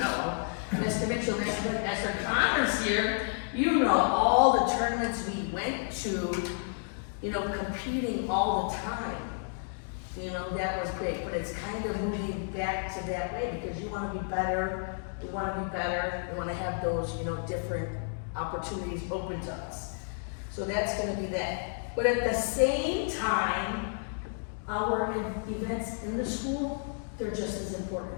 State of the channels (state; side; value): silent; right; digital silence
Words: Mr. Mitchell, Master Connors here, you know all the tournaments we went to, you know, competing all the time. You know, that was great, but it's kind of moving back to that way because you want to be better, we want to be better, we want to have those, you know, different opportunities open to us. So that's going to be that. But at the same time, our events in the school, they're just as important.